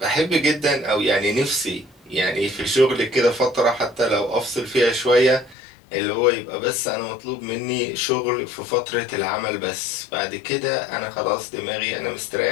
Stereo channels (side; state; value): right; drops out; at 5.6 s